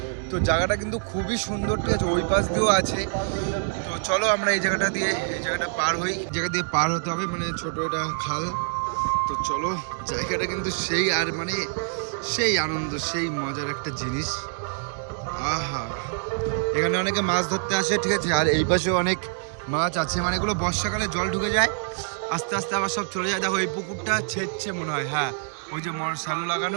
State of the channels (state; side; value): silent; left; digital silence